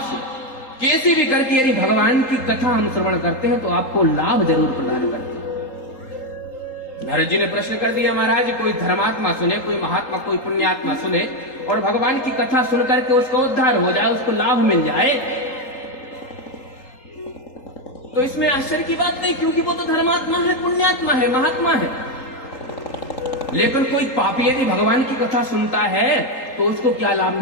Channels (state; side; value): late; right; 3.8 ms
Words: से, कैसे भी करके यदि भगवान की कथा हम श्रवण करते हैं तो आपको लाभ जरूर प्रदान करते हैं। नारद जी ने प्रश्न कर दिया, महाराज कोई धर्मात्मा सुने, कोई महात्मा, कोई पुण्यात्मा सुने और भगवान की कथा सुनकर के उसका उद्धार हो जाए, उसको लाभ मिल जाए, तो इसमें आश्चर्य की बात नहीं, क्योंकि वो तो धर्मात्मा है, पुण्यात्मा है, महात्मा है। लेकिन कोई पापी यदि भगवान की कथा सुनता है तो उसको क्या लाभ